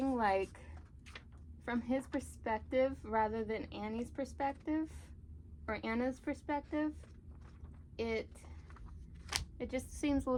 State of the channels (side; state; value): both; identical; correlation 1.00